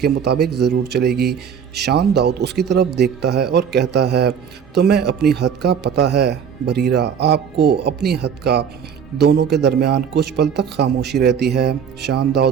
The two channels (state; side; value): quieter; left; 7.5 dB